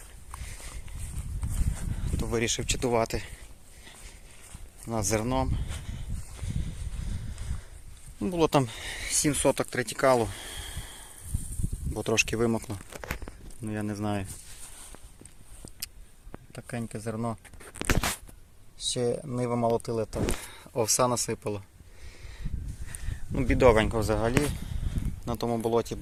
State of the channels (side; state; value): both; identical; correlation 1.00